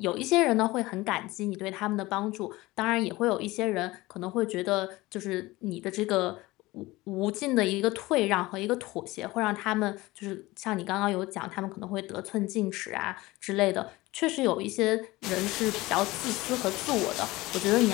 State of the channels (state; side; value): quieter; right; 19.9 dB